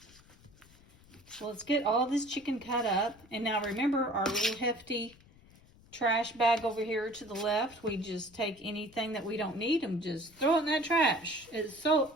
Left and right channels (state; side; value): noise; left; rumble, 26 dB below the sound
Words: So let's get all this chicken cut up. And now remember our little hefty trash bag over here to the left. We just take anything that we don't need and just throw it in that trash. It's so